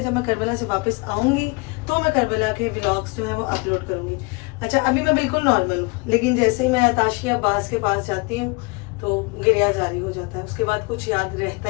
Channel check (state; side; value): quieter; right; 29.0 dB